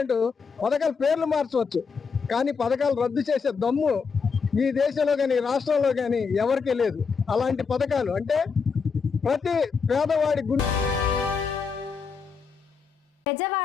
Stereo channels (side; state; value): right; quieter; 5.5 dB